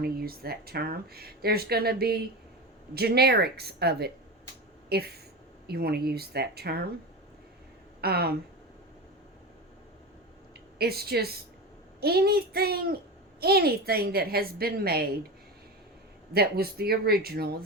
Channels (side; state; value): both; normal; correlation 0.24